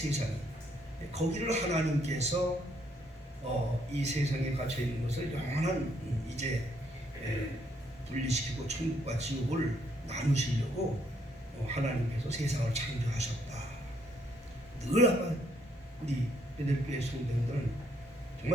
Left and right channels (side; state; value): both; normal; correlation 0.70